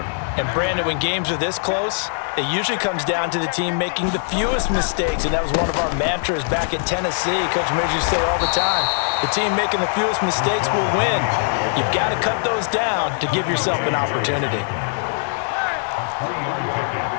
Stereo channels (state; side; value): silent; right; digital silence